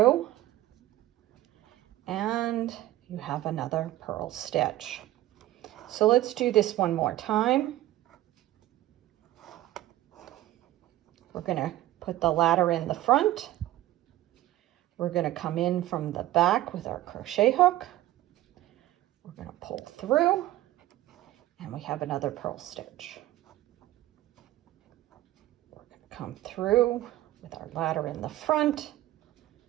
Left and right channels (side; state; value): left; quieter; 15.1 dB